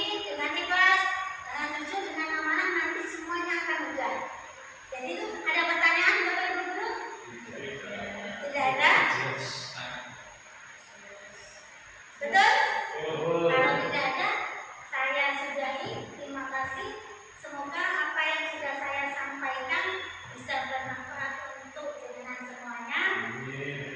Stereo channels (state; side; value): identical; both; correlation 1.00